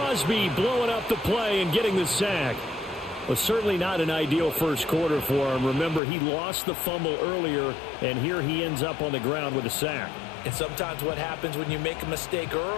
blowing up the play and getting the sack. Was certainly not an ideal first quarter for him. Remember, he lost the fumble earlier, and here he ends up on the ground with a sack. And sometimes what happens when you make a mistake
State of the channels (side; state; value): right; drops out; at 6.0 s